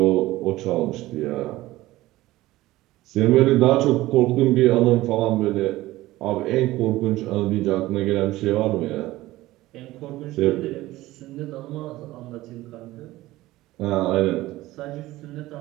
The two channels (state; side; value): quieter; left; 17.2 dB